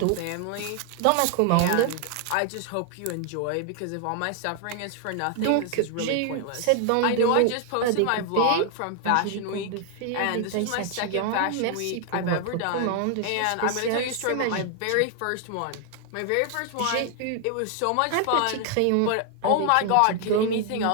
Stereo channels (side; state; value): both; different; correlation 0.00